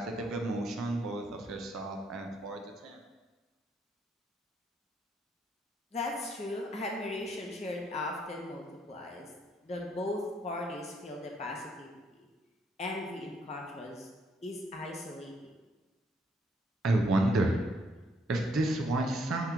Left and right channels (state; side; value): normal; both; correlation 0.71